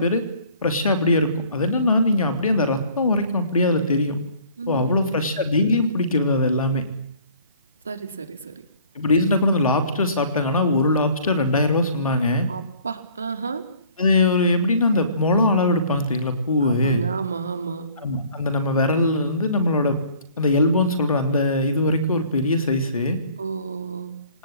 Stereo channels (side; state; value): both; inverted; correlation -0.54